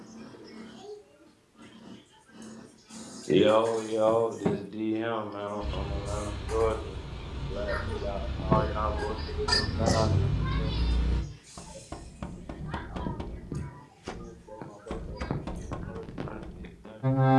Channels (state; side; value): identical; both; correlation 1.00